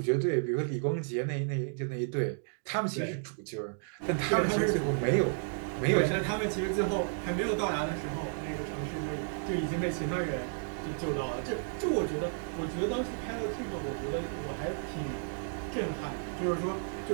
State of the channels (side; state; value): left; silent; digital silence